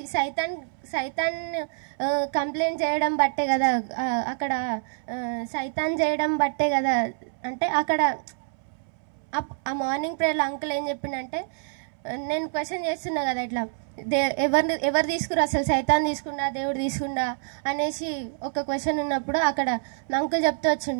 సైతాన్ కంప్లైంట్ చేయడం బట్టే కదా, అక్కడ సైతాన్ చేయడం బట్టే కదా. అంటే అక్కడ ఆ మార్నింగ్ ప్రేయర్లో అంకుల్ ఏం చెప్పిండంటే, నేను క్వశ్చన్ చేస్తున్నా కదా, ఇట్లా ఎవరు తీసుకురా, అసలు సైతాన్ తీసుకున్నా దేవుడు తీసుకున్నా అనేసి ఒక క్వశ్చన్ ఉన్నప్పుడు అక్కడ అంకుల్ చెప్తూ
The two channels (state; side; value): silent; left; 61 dB below the other